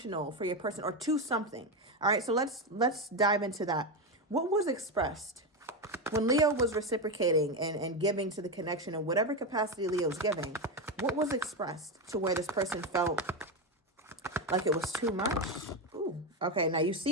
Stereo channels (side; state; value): both; normal; correlation 0.12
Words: for your person, or too something. All right, so let's dive into that. What was expressed when Leo was reciprocating and giving to the connection in whatever capacity Leo's giving? What was expressed to where this person felt like it was too much? Ooh, okay, now you